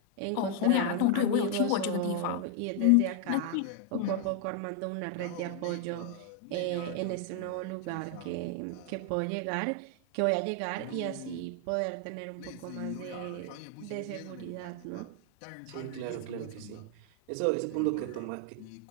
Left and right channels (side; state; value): both; different; correlation 0.00